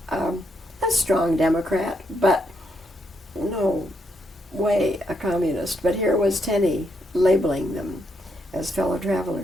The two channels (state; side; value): normal; both; correlation 0.78